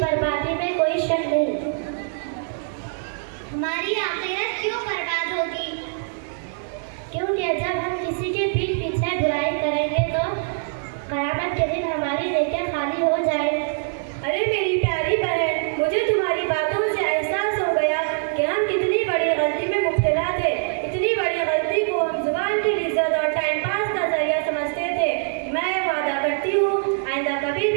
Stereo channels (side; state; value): left; silent; 63 dB below the other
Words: बर्बादी में कोई शक नहीं। हमारी आखिरत क्यों बर्बाद होगी? क्योंकि जब हम किसी के पीठ पीछे बुराई करेंगे तो क़यामत के दिन हमारी नेकियां खाली हो जाए। अरे मेरी प्यारी बहन, मुझे तुम्हारी बातों से एहसास हो गया कि हम कितनी बड़ी गलती में मुब्तला थे। इतनी बड़ी गलती को हम जुबान की इज्जत और टाइम पास का जरिया समझते थे। मैं वादा करती हूँ आइंदा कभी